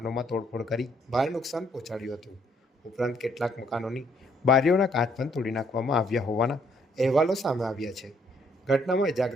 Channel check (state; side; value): normal; both; correlation 0.68